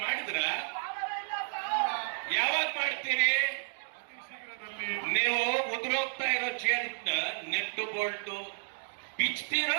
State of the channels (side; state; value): left; silent; digital silence